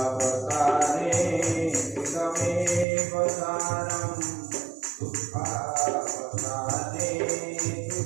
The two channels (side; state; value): left; drops out; at 2.9 s